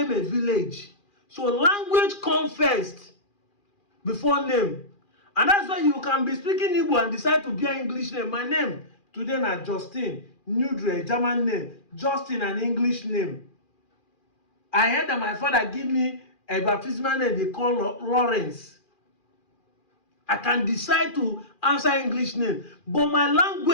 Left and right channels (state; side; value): late; right; 2.4 ms